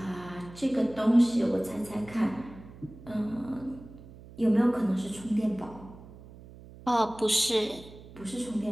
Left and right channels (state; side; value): noise; right; hum, 18 dB below the sound